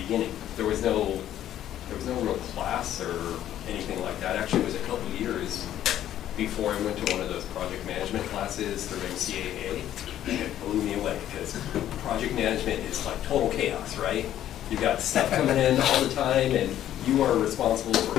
beginning. There was no real class or anything like that. Actually, it was a couple of years before I went to one of those project management classes through MCAA, and it blew me away because project management is like total chaos, right? You've got stuff coming in all the time, and you are responsible for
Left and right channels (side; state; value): right; quieter; 11.7 dB